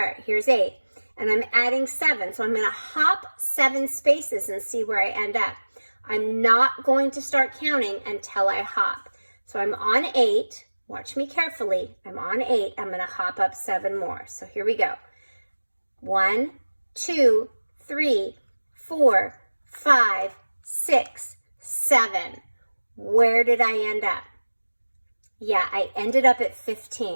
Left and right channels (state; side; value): inverted; both; correlation -1.00